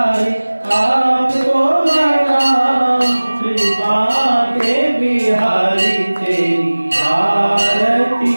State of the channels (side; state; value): both; inverted; correlation -1.00